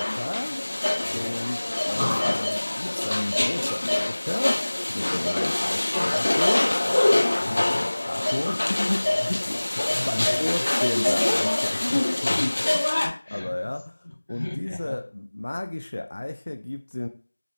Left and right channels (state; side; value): inverted; both; correlation -1.00